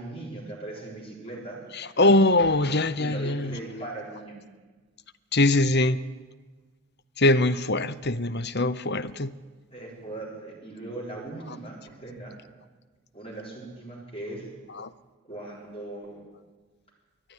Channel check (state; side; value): normal; both; correlation 0.21